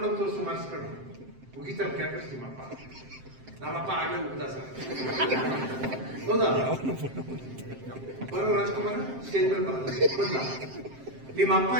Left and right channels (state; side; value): late; left; 7.6 ms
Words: ತೋರಿಸು ಮಾರ್ಕ್ಸ್ ಕಣ್ಣು ಮುಗಿತಾರೆ ಕ್ಯಾಪಸ್ ನಿಮ್ಮಪ್ಪ. ನಮ್ಮಪ್ಪ ಆಗಲೇ ಉಗ್ದ ಸರ್. ಹೌದಾ? ಬರೋ ರಾಜ್ಕುಮಾರ್ ಸ್ಟೇಜ್ ಮೇಲೆ ಬಂದ. ನಿಮ್ಮ ಅಪ್ಪ